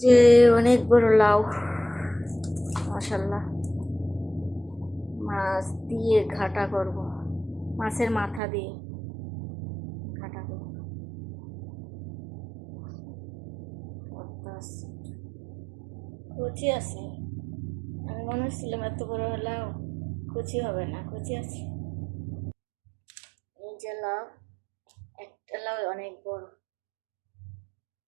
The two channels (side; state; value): left; drops out; at 8.4 s